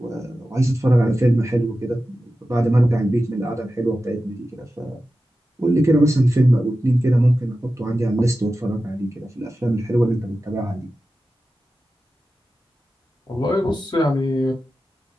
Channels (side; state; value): both; normal; correlation 0.93